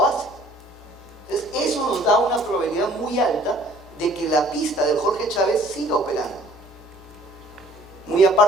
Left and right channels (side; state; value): both; normal; correlation 0.55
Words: Entonces, eso nos da una probabilidad muy alta de que la pista del Jorge Chávez siga operando. Muy